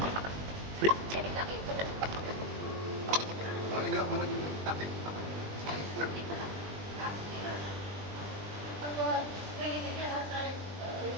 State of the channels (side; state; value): left; late; 20 ms